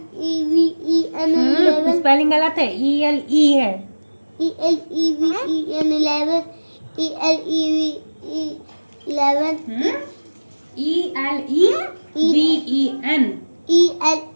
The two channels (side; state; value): both; inverted; correlation -1.00